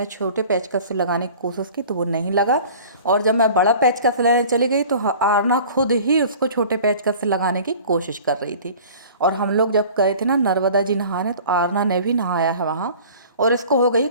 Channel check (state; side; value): inverted; both; correlation -0.44